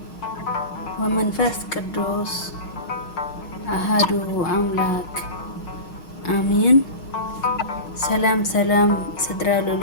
ወመንፈስ ቅዱስ አሃዱ አምላክ አሜን። ሰላም ስድራ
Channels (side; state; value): right; late; 6.4 ms